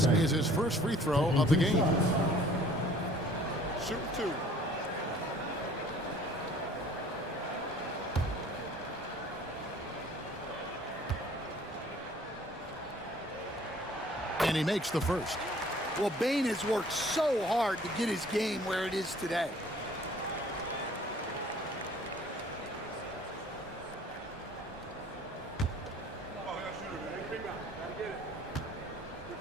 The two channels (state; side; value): normal; both; correlation 0.54